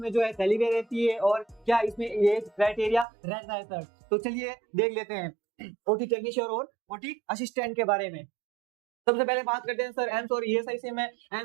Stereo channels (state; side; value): drops out; left; at 3.1 s